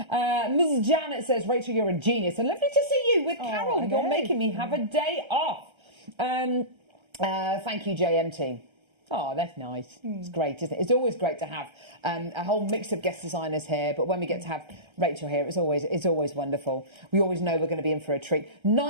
Ms. Janet says, Rachel, you're a genius. And lovely to see you with Carol. You're making me have a day off. Thank you, JMT. Oh, that's nice. It's great, isn't it? It's always great to have a whole mix of guest designers here, but when we get to have Rachel here, it's always wonderful. We always know we're going to be in for a treat.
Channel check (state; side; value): late; left; 1.3 ms